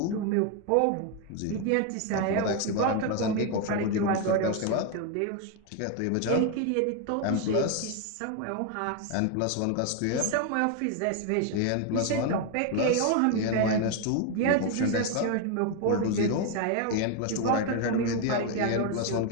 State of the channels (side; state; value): both; different; correlation 0.01